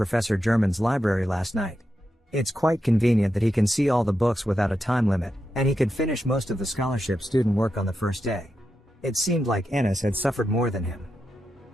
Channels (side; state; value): both; normal; correlation 0.87